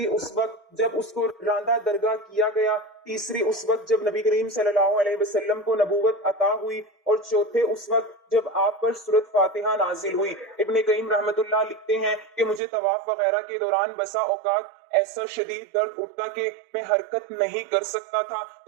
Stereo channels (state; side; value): drops out; left; at 12.6 s